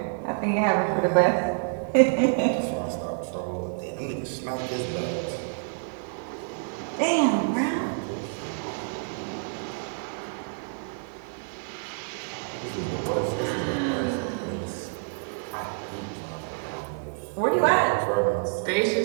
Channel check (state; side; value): silent; left; digital silence